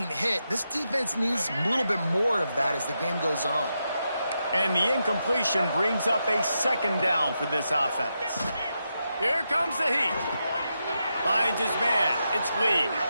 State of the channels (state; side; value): inverted; both; correlation -0.86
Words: hit. This defense needs a little bit more of that as the game goes on. And the incompletion brings up a 2nd down for this offense. Here comes the heat. Finds his man. It's Lee.